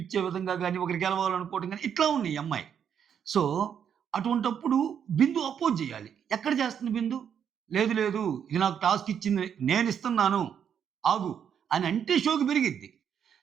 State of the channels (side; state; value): left; quieter; 8.2 dB